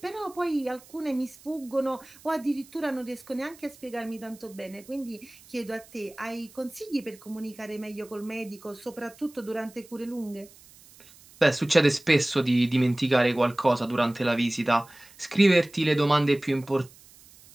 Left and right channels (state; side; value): noise; right; hiss, 24 dB below the sound